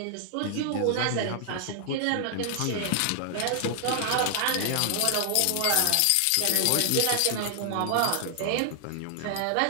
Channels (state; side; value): different; both; correlation 0.00